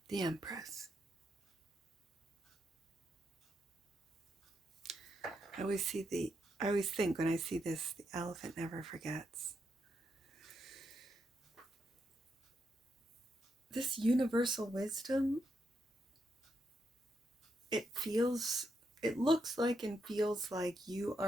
The Empress. I always think when I see this, the elephant never forgets. This universal wisdom, it looks like and feels like you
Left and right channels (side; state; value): both; normal; correlation 0.81